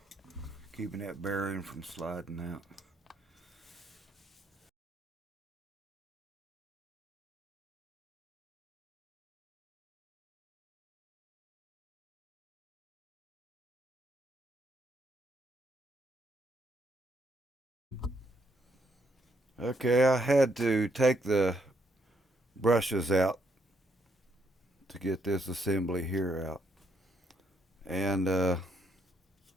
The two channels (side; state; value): both; normal; correlation 0.74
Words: keeping that bearing from sliding out. Okay, I had to take the brushes out to get this assembly here out. And